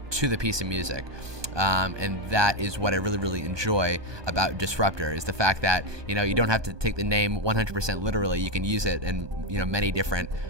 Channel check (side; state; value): left; late; 1.2 ms